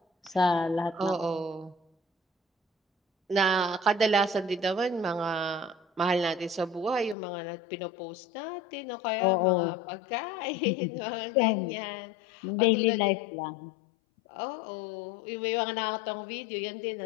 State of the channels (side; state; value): right; drops out; at 7.2 s